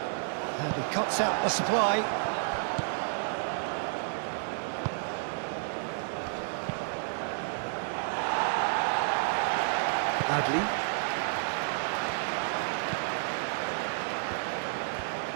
And he cuts out the supply. Adli.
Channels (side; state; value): left; silent; 57 dB below the other